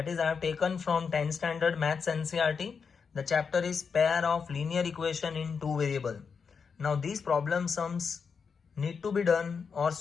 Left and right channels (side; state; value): right; quieter; 5.8 dB